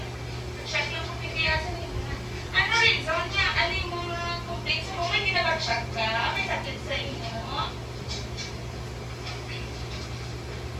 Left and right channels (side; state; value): both; identical; correlation 1.00